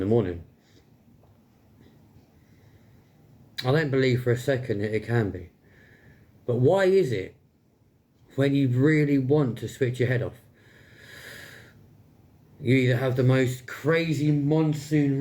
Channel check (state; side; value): identical; both; correlation 1.00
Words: the morning? I don't believe for a second that it can be. But why is it, when you really want to switch your head off, you either have the most crazy monsoon